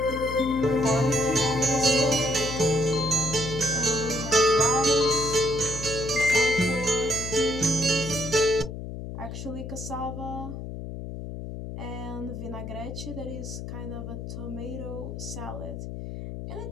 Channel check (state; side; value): noise; left; hum, 8 dB below the sound